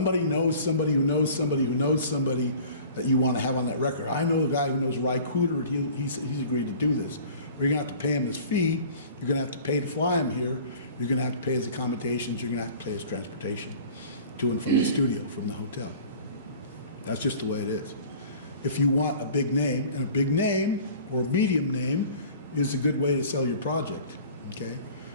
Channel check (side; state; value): both; inverted; correlation -0.45